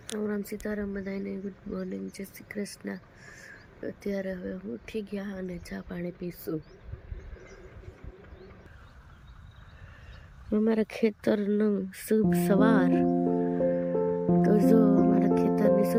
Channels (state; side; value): identical; both; correlation 1.00